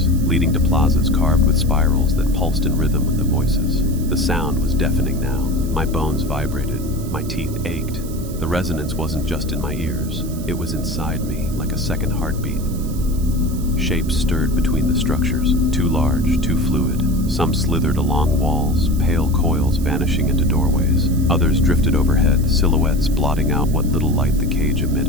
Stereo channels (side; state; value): right; noise; hiss, 17 dB below the sound